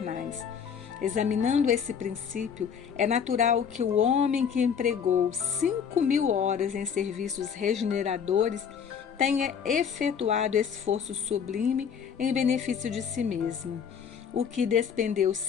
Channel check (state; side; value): quieter; right; 7.3 dB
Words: Examinando esse princípio, é natural que o homem que empregou 5.000 horas em serviços regeneradores tenha efetuado esforço sublime em benefício de si mesmo. O que despendeu